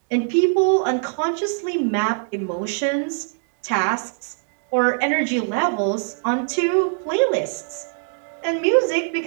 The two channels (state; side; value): silent; left; digital silence